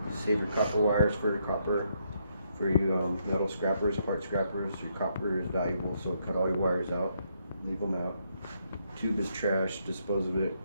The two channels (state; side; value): inverted; both; correlation -0.76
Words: Save your copper wires for your copper. For you metal scrappers, part scrappers, your copper is valuable, so cut all your wires out, leave them out. Tube is trash, dispose of it